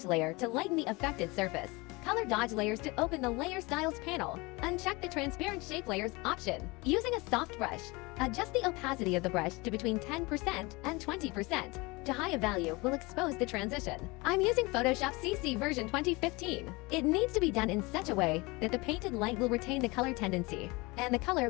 layer to lighten the affected surface. Color dodge layers to open the layer styles panel. Uncheck the transparent shape layers option. Using a soft brush, adjust the opacity of the brush to between 10% and 20%. To higher value will expose the transition. I'm using Photoshop CC version 2015. It needs to be done in such a way that the painted light will retain the color tendency, and the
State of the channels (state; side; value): quieter; right; 24.6 dB